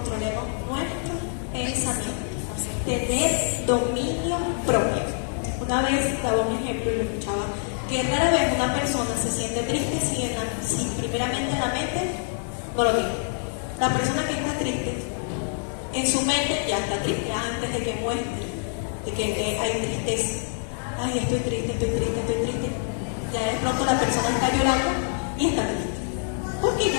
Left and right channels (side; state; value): right; silent; 58 dB below the other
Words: nuestros pensamientos, tener dominio propio. Una vez daba un ejemplo y lo escuchaba, que rara vez una persona se siente triste si primeramente en la mente no lo tiene. La persona que está triste, en su mente ya está triste antes de que muestre, de que hay tristeza. Ay, estoy triste. Ya de pronto la persona está llorando y está triste. Porque